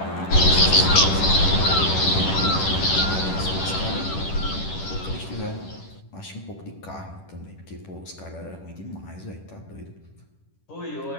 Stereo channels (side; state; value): right; late; 10 ms